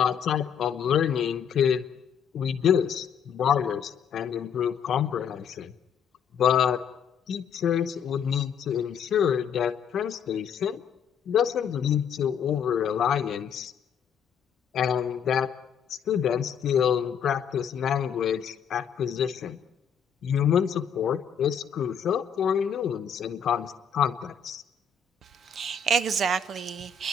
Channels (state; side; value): quieter; right; 6.9 dB